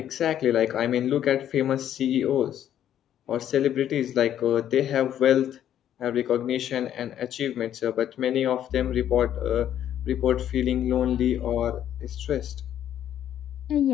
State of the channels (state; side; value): quieter; right; 10.7 dB